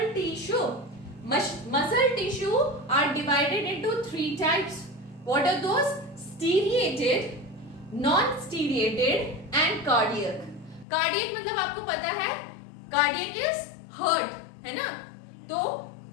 tissue. Muscle tissue are divided into 3 types. What are those? Striated, non-striated and cardiac. Cardiac मतलब आपको पता है, cardiac is heart, है ना? तो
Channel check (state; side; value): drops out; right; at 10.9 s